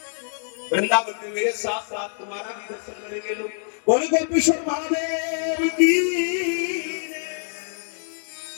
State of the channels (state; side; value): silent; right; digital silence